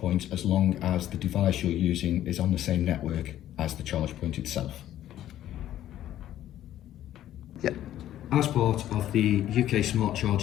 as long as the device you're using is on the same network as the charge point itself. Yep. As part of the UK smart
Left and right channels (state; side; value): quieter; right; 12.4 dB